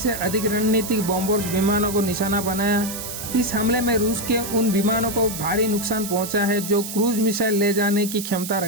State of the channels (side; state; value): right; noise; hiss, 8 dB below the sound